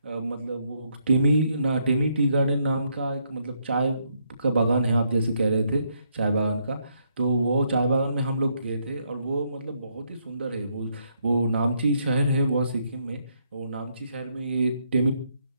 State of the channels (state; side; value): inverted; both; correlation -0.74